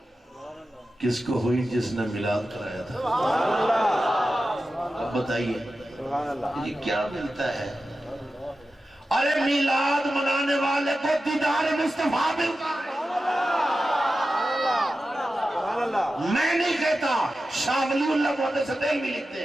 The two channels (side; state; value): both; normal; correlation 0.92